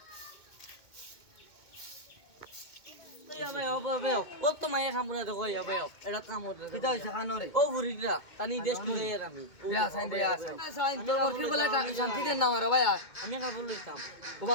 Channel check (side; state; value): right; late; 2.2 ms